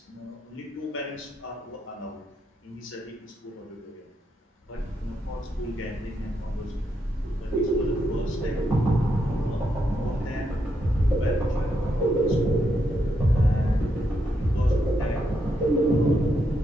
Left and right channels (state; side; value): normal; both; correlation 0.80